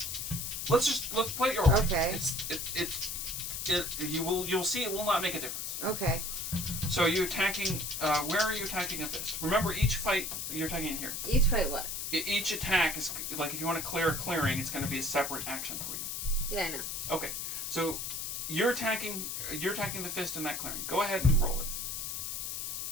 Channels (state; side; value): noise; left; hiss, 4 dB below the sound